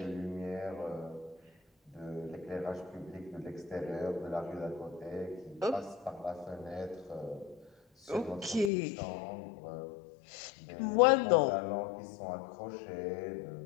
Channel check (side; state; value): right; drops out; at 8.7 s